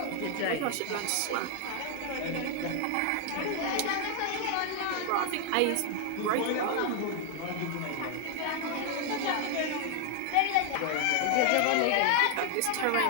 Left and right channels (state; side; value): different; both; correlation 0.00